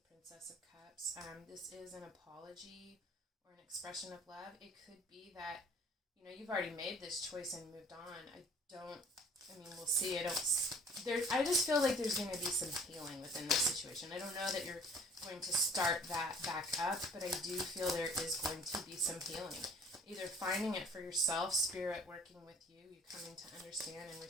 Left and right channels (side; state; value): both; normal; correlation 0.53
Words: Princess of Cups. This is an apology or an expression of love. It could be that, you've already made this choice and moved on. We'll see. I just feel like there's going to be some healing within this situation. I don't know that you're going to start that back up, but I do feel there is going to be some healing. Either finding it for yourself, spirit working with you coming to understand and